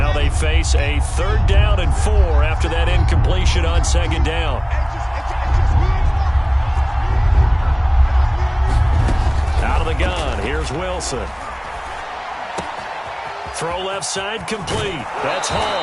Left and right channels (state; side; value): identical; both; correlation 1.00